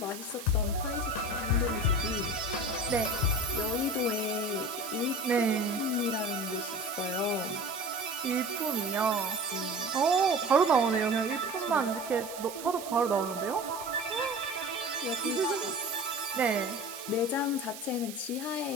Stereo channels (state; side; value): noise; right; hiss, 12 dB below the sound